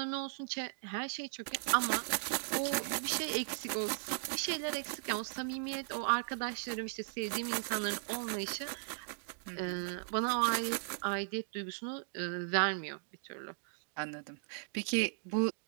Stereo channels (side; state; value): left; silent; digital silence